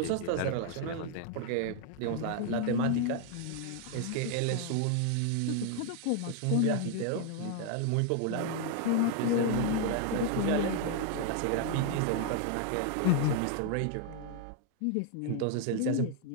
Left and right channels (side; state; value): both; different; correlation 0.00